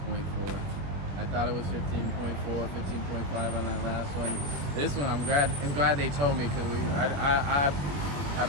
I thought it was 15.4, 15.5 on that last one. This one, I'm glad they told me, because I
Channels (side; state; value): left; late; 21 ms